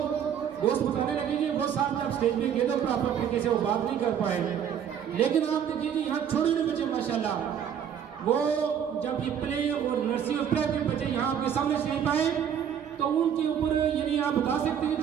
دوست بتانے لگے کہ وہ صاحب جب اسٹیج پہ گئے تو پراپر طریقے سے وہ بات نہیں کر پائے. لیکن آپ دیکھیے کہ یہاں چھوٹے چھوٹے بچے ماشاءاللہ وہ جب یہ پلے اور نرسری اور پرائمری بچے یہاں آپ کے سامنے سے نہیں پائے تو ان کے اوپر یعنی آپ بتا سکتے ہیں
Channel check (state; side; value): quieter; left; 8.6 dB